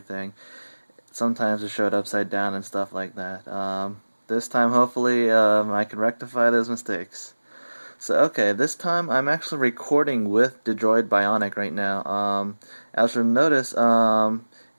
sometimes it showed upside down and stuff like that. This time, hopefully, I can rectify those mistakes. So, okay, this time I'm actually recording with the Droid Bionic right now. As you'll notice,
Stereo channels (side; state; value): both; inverted; correlation -1.00